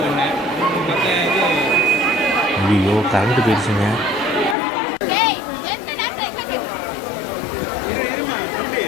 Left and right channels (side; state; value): right; drops out; at 4.5 s